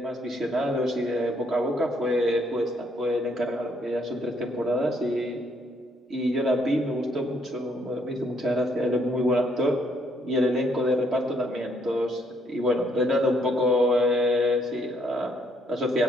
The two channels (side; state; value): both; normal; correlation 0.70